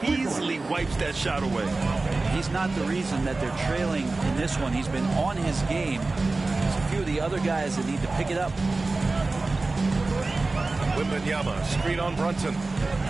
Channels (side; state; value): left; quieter; 3.4 dB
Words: easily wipes that shot away. He's not the reason that they're trailing in this one. He's been on his game. There's a few of the other guys that need to pick it up. Wembanyama, screen on Brunson.